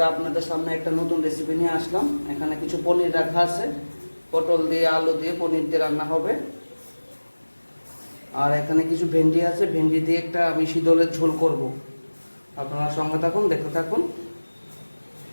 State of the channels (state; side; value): inverted; both; correlation -1.00